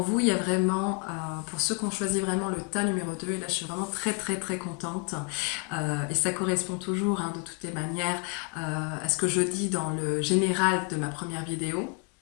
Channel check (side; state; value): right; quieter; 37.0 dB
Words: vous, il y a vraiment, pour ceux qui ont choisi vraiment le tas numéro 2, et là je suis vraiment très contente, et ça correspond toujours, hein, de toutes les manières à ce que je dis dans le général de ma première vidéo.